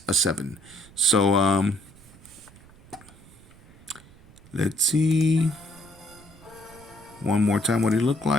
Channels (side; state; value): right; noise; rumble, 24 dB below the sound